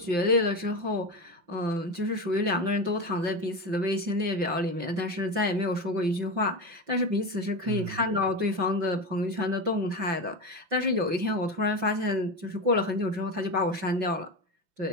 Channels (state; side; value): late; left; 5.3 ms